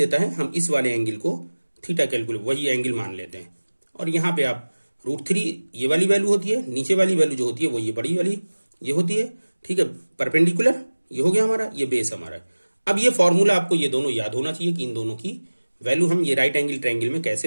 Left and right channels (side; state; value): both; inverted; correlation -1.00